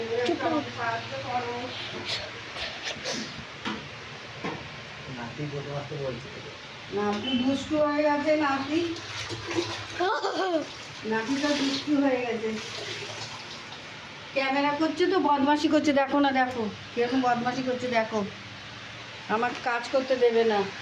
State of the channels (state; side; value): identical; both; correlation 1.00